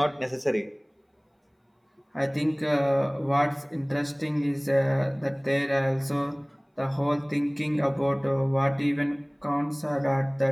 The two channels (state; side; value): identical; both; correlation 1.00